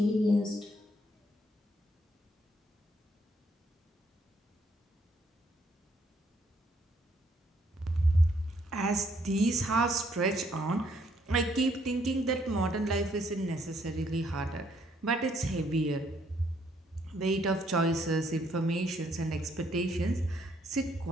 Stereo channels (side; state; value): both; normal; correlation 0.69